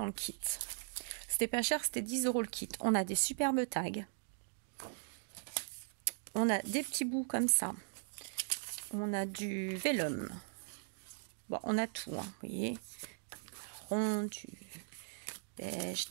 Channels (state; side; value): silent; left; digital silence